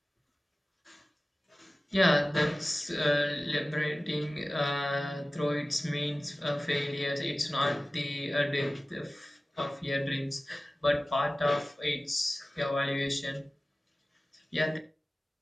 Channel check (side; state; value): both; normal; correlation 0.97